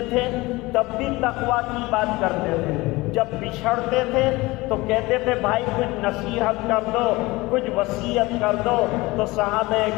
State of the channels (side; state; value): right; quieter; 21.4 dB